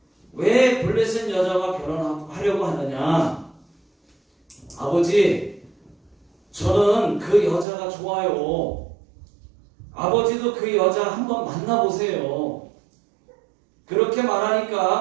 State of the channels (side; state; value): left; drops out; at 7.7 s